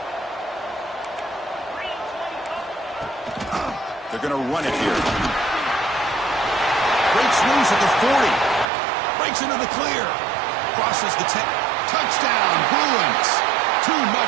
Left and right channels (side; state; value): left; drops out; at 8.7 s